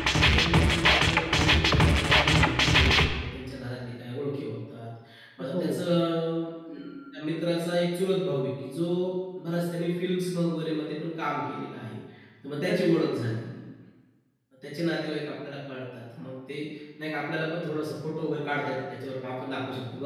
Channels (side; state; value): both; identical; correlation 1.00